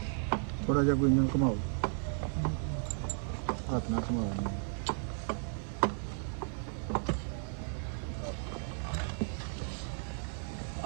ਥੋੜਾ ਜਿਹਾ ਕੋਈ ਇੰਜਨ ਘੁਮਾਓ ਹੱਥ ਨਾਲ ਘੁਮਾਓ ਇਹਨੂੰ।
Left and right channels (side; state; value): left; silent; 55 dB below the other